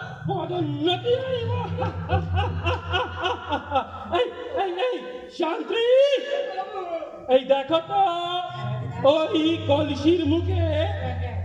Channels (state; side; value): identical; both; correlation 1.00